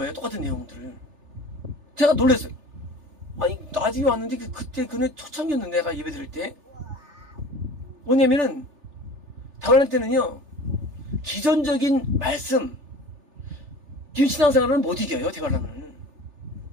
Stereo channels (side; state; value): left; late; 3.4 ms